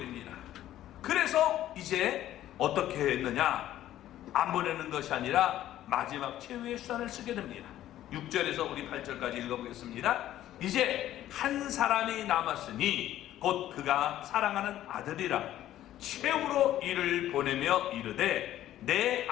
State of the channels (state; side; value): quieter; right; 13.0 dB